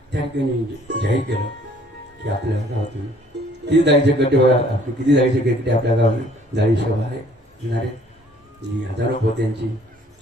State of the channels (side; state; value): both; normal; correlation 0.59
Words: त्या ठिकाणी जाहीर केलं की आपल्या गावातून किती जाळीचे गड्डे आपले किती जाळीचे गड्डे आपल्या गावात जाळी सभा आहे येणारे जी हजारो पोत्यांची